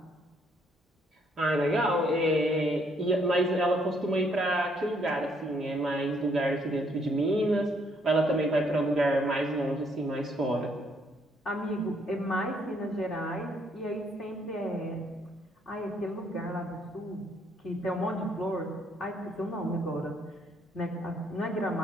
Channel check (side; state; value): both; normal; correlation 0.69